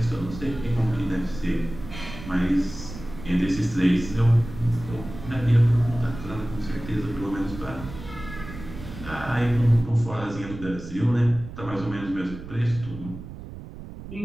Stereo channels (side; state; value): right; noise; rumble, 12 dB below the sound